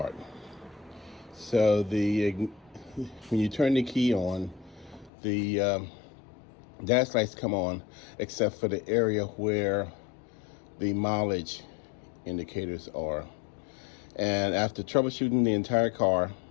So when you turn the key on, the dash lights come on, except for the area where the mileage indicators are. And after troubleshooting the entire car,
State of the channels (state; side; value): drops out; right; at 5.1 s